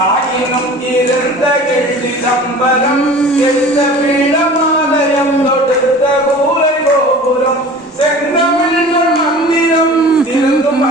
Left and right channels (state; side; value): normal; both; correlation 0.41